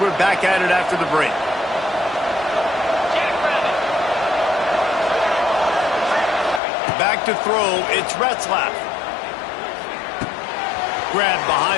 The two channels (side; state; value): right; drops out; at 6.6 s